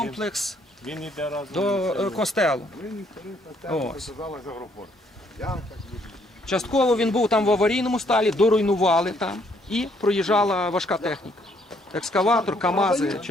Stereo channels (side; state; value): both; normal; correlation 0.68